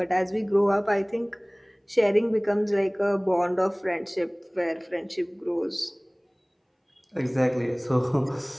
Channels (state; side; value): identical; both; correlation 1.00